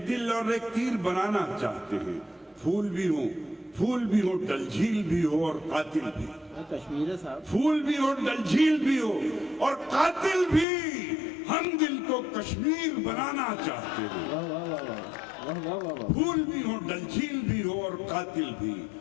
دل اور ایک تیر بنانا چاہتے ہیں. پھول بھی ہوں, پھول بھی ہو, ڈل جھیل بھی ہو اور قاتل بھی. کشمیر ہے صاحب. پھول بھی ہو, ڈل جھیل بھی ہو اور قاتل بھی. ہم دل کو کشمیر بنانا چاہتے ہیں. واہ واہ واہ واہ واہ واہ واہ. پھول بھی ہو, ڈل جھیل بھی ہو اور قاتل بھی.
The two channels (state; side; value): drops out; right; at 10.7 s